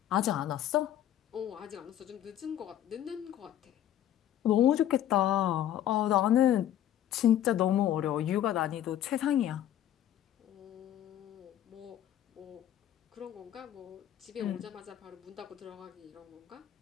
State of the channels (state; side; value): quieter; right; 11.6 dB